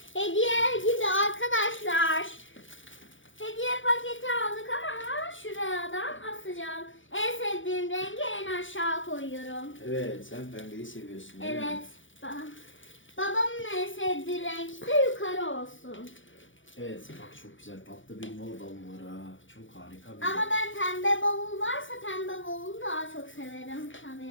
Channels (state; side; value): late; right; 0.56 ms